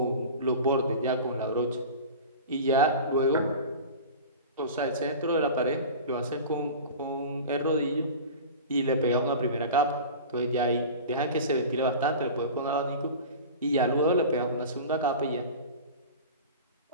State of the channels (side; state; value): both; inverted; correlation -0.34